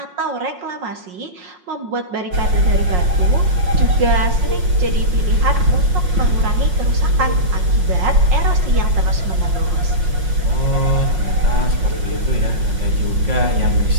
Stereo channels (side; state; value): left; late; 5.5 ms